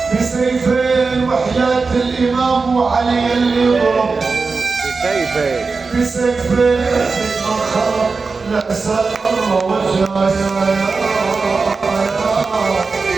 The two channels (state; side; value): quieter; left; 4.4 dB